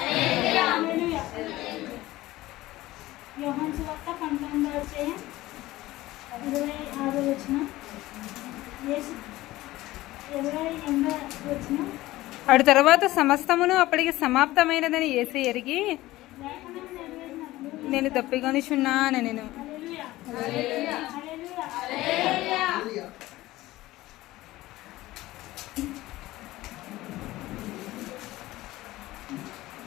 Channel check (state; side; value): quieter; right; 17.4 dB